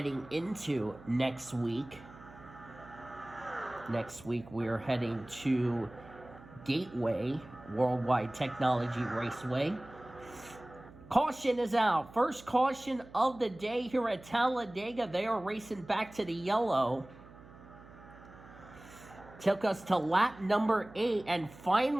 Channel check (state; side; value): noise; right; hum, 20 dB below the sound